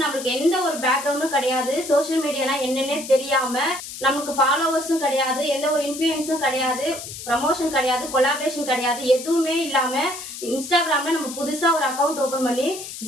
நம்மளுக்கு எந்த ஒரு பேக்ரவுண்டும் கிடையாது, சோசியல் மீடியாலாம் என்னன்னே தெரியாம, நமக்கு ஃபாலோவர்ஸும் கிடையாது, எந்த ஒரு இன்ஃபுளுன்ஸும் கிடையாது, ப்ரமோஷன் கிடையாது, கொலாபரேஷன் கிடையாது, எதுவுமே இல்லாம இன்ஸ்டாகிராம்ல நம்ம புதுசா ஒரு அக்கௌண்ட் ஓபன் பண்ணி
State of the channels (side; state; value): left; noise; hiss, 10 dB below the sound